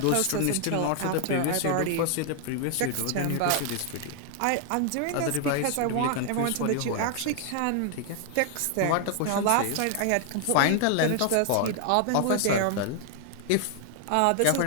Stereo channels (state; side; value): different; both; correlation 0.00